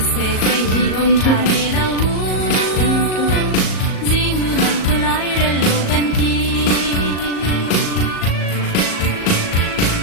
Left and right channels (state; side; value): late; right; 38 ms